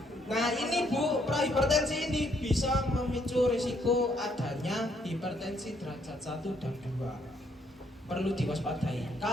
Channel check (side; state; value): both; normal; correlation 0.70